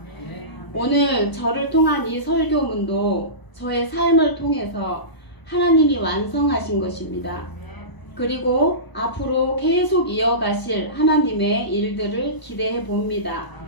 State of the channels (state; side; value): late; right; 1.0 ms